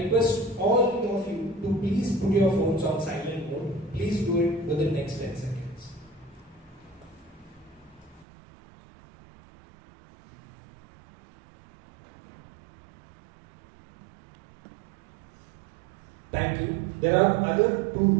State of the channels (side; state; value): left; drops out; at 8.2 s